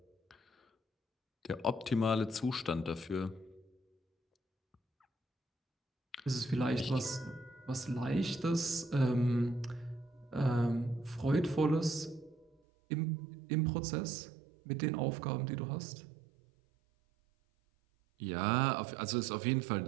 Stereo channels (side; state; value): left; drops out; at 12.6 s